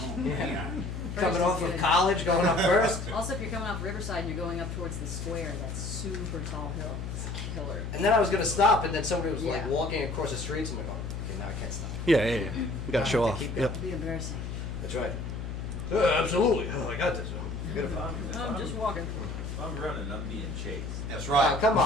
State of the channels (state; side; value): noise; left; hum, 6 dB below the sound